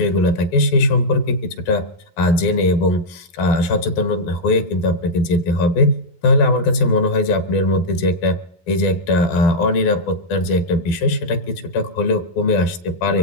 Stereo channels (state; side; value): late; right; 12 ms